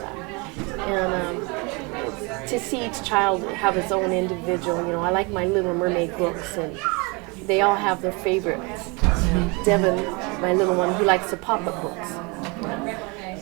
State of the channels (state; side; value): quieter; left; 29.0 dB